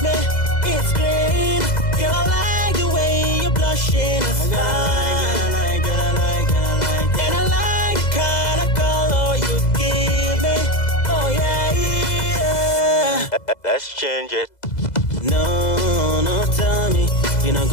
me. It's green. Girl, I like the way you're blushing. It's fine. I like. And I like the kind of color you give me. Oh yeah. Let's change it. No, tell me you not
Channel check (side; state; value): right; late; 2.0 ms